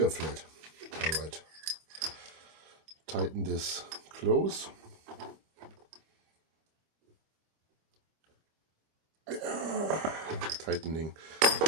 are flat. All right. Tighten this close. Tightening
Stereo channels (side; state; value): left; late; 25 ms